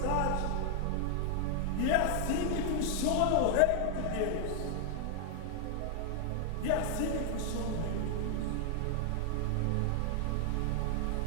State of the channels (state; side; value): different; both; correlation 0.00